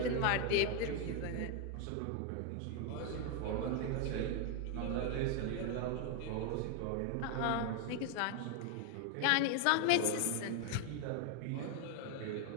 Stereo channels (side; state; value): both; different; correlation 0.01